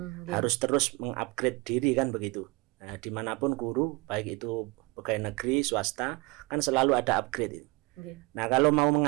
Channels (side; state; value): left; quieter; 25.2 dB